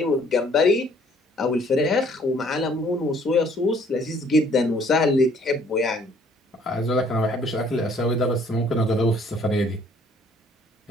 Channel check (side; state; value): both; normal; correlation 0.60